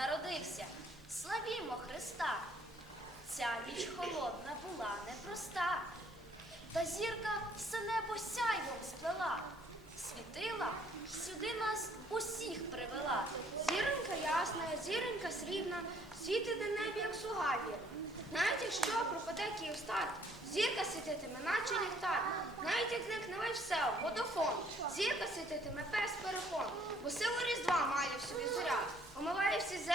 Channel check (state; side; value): noise; left; hum, 24 dB below the sound